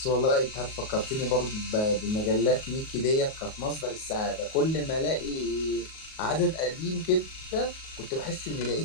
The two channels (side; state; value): right; late; 38 ms